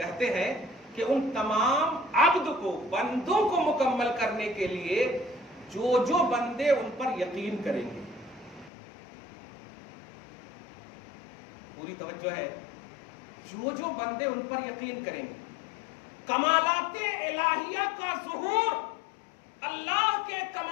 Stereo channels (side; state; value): right; drops out; at 8.7 s